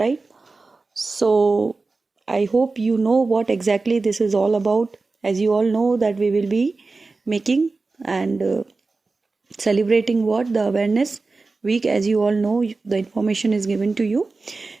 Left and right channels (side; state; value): left; quieter; 3.8 dB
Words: So I hope you know what exactly this is all about. as you all know that we will be making and celebrating what the awareness week. As you all know, the information is given to you.